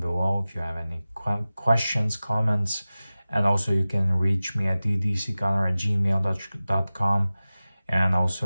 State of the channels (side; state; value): both; inverted; correlation -0.97